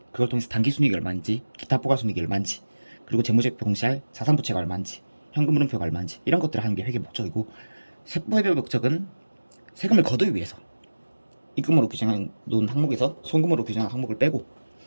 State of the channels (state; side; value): inverted; both; correlation -1.00